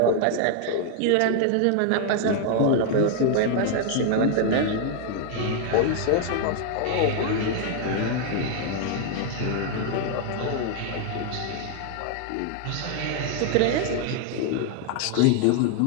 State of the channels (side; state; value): both; different; correlation 0.00